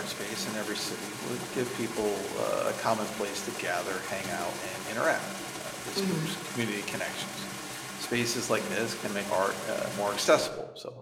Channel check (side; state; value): both; identical; correlation 1.00